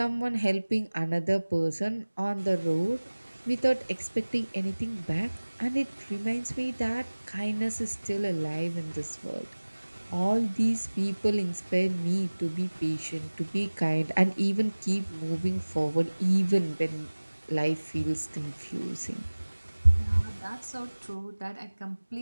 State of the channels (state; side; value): inverted; both; correlation -1.00